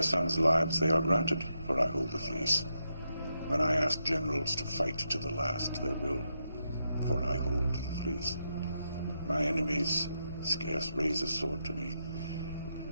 sons lives, they are granted, for I hold the fleece. When I ask generals to fight to the last, they will, for I hold the fleece. My enemies scarce raise a sword to me.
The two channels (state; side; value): inverted; both; correlation -0.83